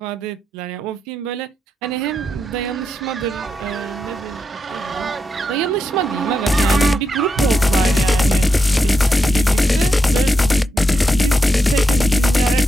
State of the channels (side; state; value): both; normal; correlation 0.85